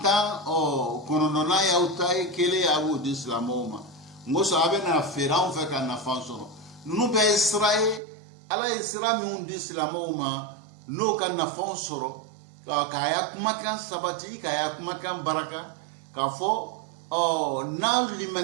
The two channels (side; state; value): left; drops out; at 8.0 s